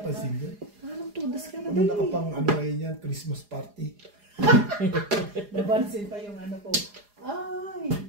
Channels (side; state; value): left; late; 4.8 ms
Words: ko. Parang todas ka na Ano nakapang ano kayo yan? Christmas party. Nabansin pa yung ano ko. Ay!